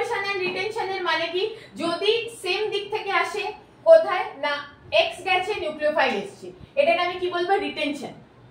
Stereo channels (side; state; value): both; identical; correlation 1.00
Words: এন্ড রিটেনশনের মানে কি, যদি সেম দিক থেকে আসে, কোথায় না X গেছে নিউক্লিওফাইল এসেছে, এটাকে আমি কি বলবো,